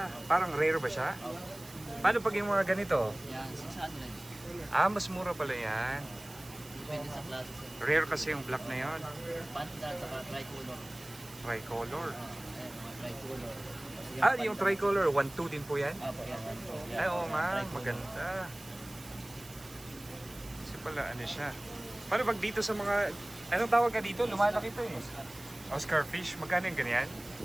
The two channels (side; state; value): right; noise; hiss, 19 dB below the sound